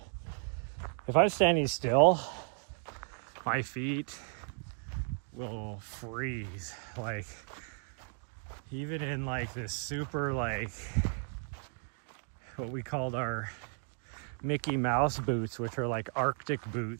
if I'm standing still, my feet will freeze. Like, even in like this super, like, what we called our Mickey Mouse boots, which are like Arctic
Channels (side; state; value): left; silent; 55 dB below the other